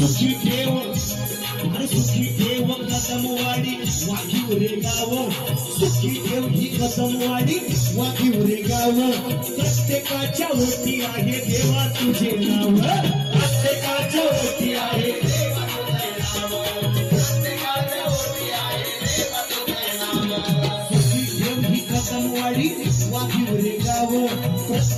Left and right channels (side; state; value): both; identical; correlation 1.00